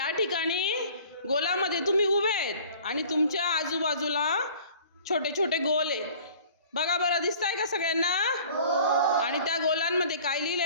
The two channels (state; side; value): inverted; both; correlation -0.48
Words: ठिकाणी गोलामध्ये तुम्ही उभे आहेत आणि तुमच्या आजूबाजूला छोटे छोटे गोल आहेत. बघा बरं, दिसतंय का सगळ्यांना? आणि त्या गोलांमध्ये काय